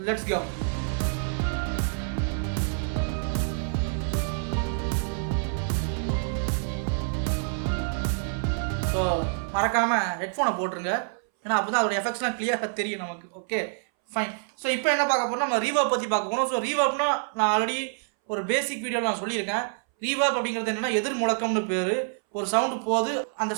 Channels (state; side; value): silent; left; 60 dB below the other